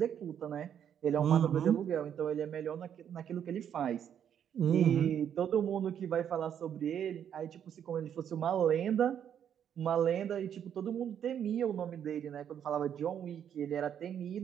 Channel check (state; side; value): quieter; left; 9.0 dB